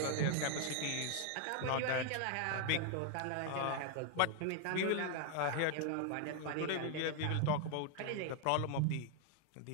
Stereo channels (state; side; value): different; both; correlation 0.01